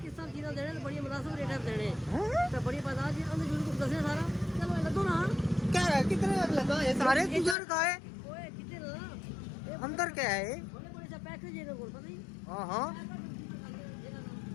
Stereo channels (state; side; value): drops out; right; at 7.6 s